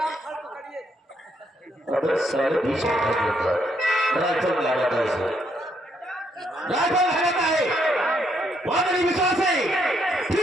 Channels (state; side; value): normal; both; correlation 0.74